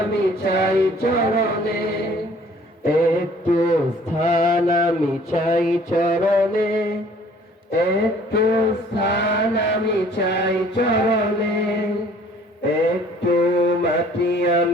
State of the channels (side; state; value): both; normal; correlation 0.55